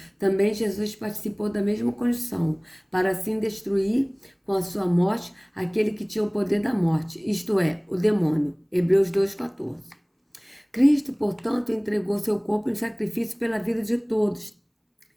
também Jesus participou da mesma condição, para assim destruir com a sua morte aquele que tinha o poder da morte, isto é, o demônio. Hebreus 2,14. Cristo, portanto, entregou seu corpo em sacrifício pela vida de todos.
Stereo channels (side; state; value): both; identical; correlation 1.00